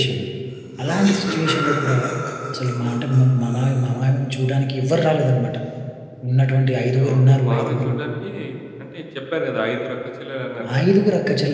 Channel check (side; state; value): both; identical; correlation 1.00